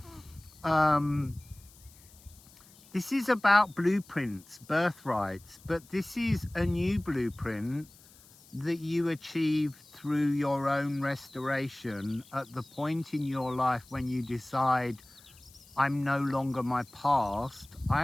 This is about blueprints, birthrights, but this is a new blueprint that you achieve through your own restoration at the point in your life when you decide, I'm no longer my past. I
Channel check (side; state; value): left; noise; hiss, 25 dB below the sound